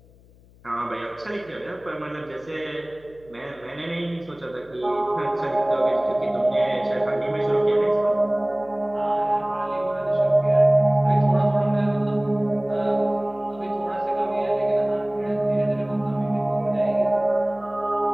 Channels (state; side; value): noise; left; hum, 27 dB below the sound